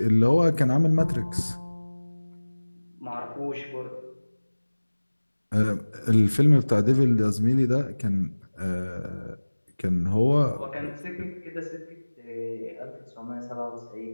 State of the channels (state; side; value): inverted; both; correlation -1.00